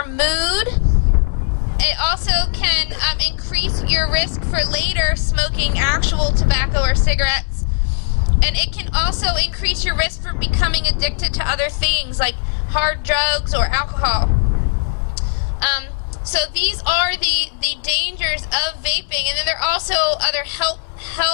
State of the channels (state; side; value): silent; right; digital silence